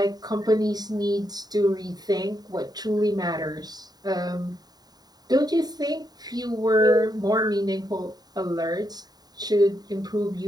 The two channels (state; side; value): late; left; 0.19 ms